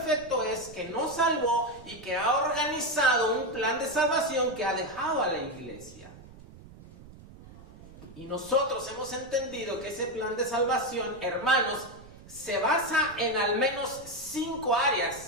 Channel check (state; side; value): noise; right; rumble, 19 dB below the sound